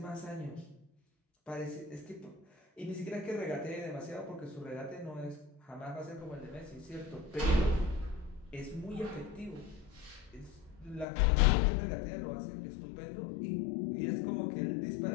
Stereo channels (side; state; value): right; drops out; at 11.1 s